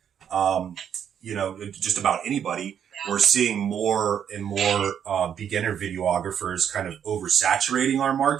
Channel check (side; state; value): left; quieter; 8.6 dB